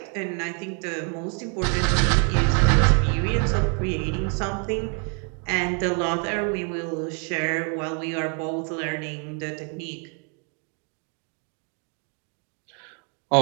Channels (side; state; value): left; quieter; 39.8 dB